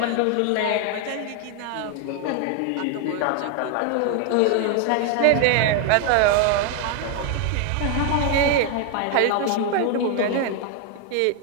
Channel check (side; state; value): both; different; correlation 0.00